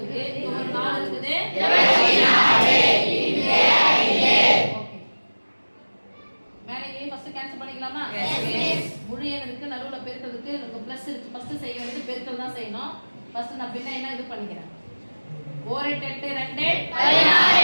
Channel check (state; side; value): inverted; both; correlation -1.00